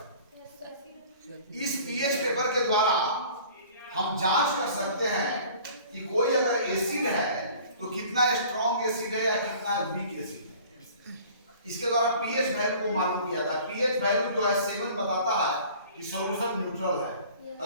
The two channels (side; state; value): both; inverted; correlation -0.48